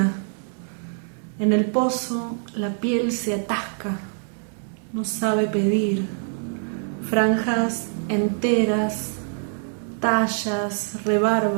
En el pozo la piel se atasca, no sabe pedir. Franjas enteras, tallas,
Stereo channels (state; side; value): silent; left; 62 dB below the other